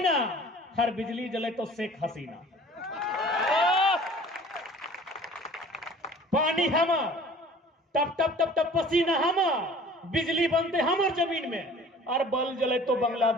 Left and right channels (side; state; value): both; normal; correlation 0.48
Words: हर बिजली जले तो शेख हसीना। पानी हमर, टप टप टप टप पसीना हमर, बिजली बनते हमर जमीन में, और बल जले तो